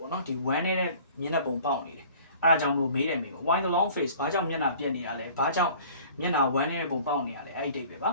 ေါ့နော်ဒီ one နဲ့မျက်နှာပုံပေါက်နေတယ်အဲ့ဒါကြောင့်မလို့မေးတယ်မေးပေါ့ why the long face ဘာကြောင့်မျက်နှာပြက်နေတာလဲဘာကြောင့်မျက်နှာ one နဲ့ပုံပေါက်နေရလဲအဲ့ဒီတိတ်ပဲပါ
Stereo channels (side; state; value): both; inverted; correlation -0.48